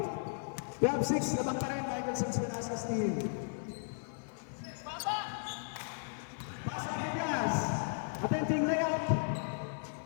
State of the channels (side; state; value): right; silent; 54 dB below the other